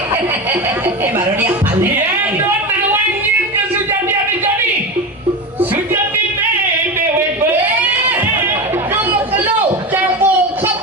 Baru dia pandai. Ya, dua tawannya ke Sujati jadi. Sujati dewe. Kamu kelu, campur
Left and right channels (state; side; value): normal; both; correlation 0.22